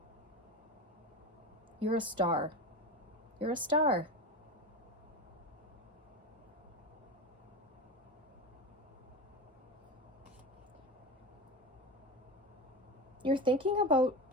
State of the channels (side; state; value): both; normal; correlation 0.23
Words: You're a star. You're a star. You're thinking about,